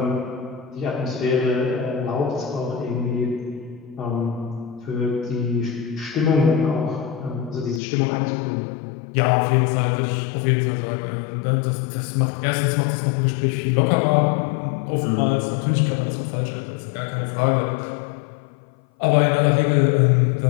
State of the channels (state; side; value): drops out; right; at 7.8 s